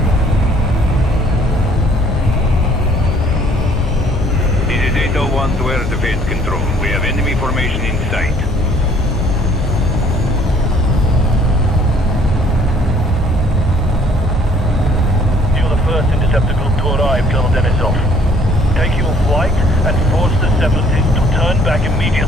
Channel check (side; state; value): both; normal; correlation 0.59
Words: This is 801 to air defense control. We have enemy formation in sight. Interceptor group to arrive, Colonel Denisov. Take your flight and force the separatists to turn back